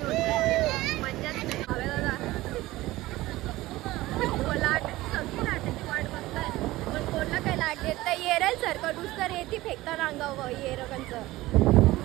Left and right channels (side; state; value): left; quieter; 17.9 dB